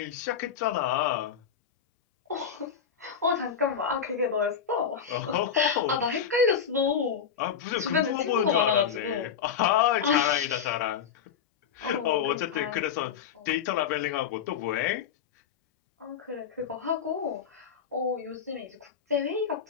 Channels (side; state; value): right; quieter; 7.4 dB